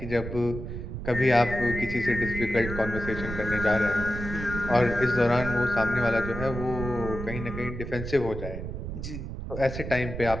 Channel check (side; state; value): right; noise; rumble, 7 dB below the sound